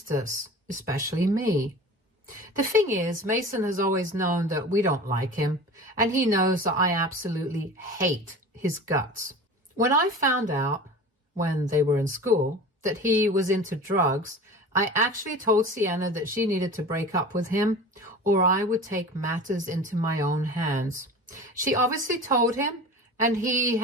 us, especially me. The thing is, Mason has always known that we don't like him, and he knows that I absolutely hate his guts. When I found out, when they were in school, that he was into drugs, I actually told Sienna that she needed to break up with him, or I would take matters into my own hands. She obviously told him, and he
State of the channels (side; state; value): both; normal; correlation 0.36